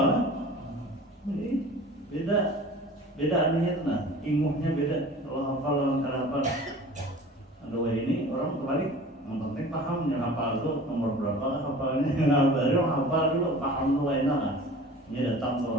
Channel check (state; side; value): normal; both; correlation 0.42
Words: kan? Ini beda anunya tuh nah, ilmunya beda. Kalau hafal lawan hafal. Aduh ini orang kebalik, yang penting paham yang hafal tuh nomor berapa hafalnya. Nah baru hafal dulu paham tuh enak kan. Ini datang